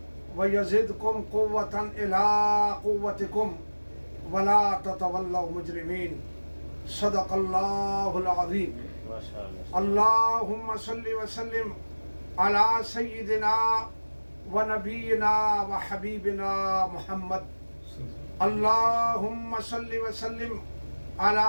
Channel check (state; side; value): inverted; both; correlation -1.00